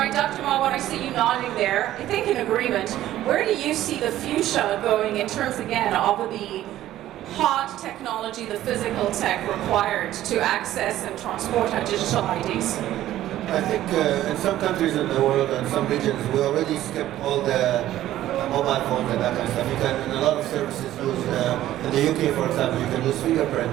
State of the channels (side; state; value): left; quieter; 13.6 dB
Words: Dr. Marwan, I see you nodding there. I think in agreement. Where do you see the future going in terms, again, of the hard technology, the physical tech required to access and transport our digital IDs? I think in some countries in the world and some regions, we already skipped all the mobile phones and that kind of stuff. You can, in a lot of services, use, in the UK, for example, you can use fingerprint